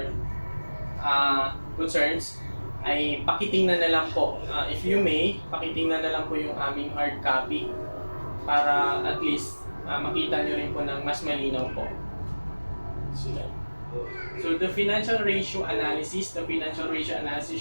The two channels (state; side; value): inverted; both; correlation -1.00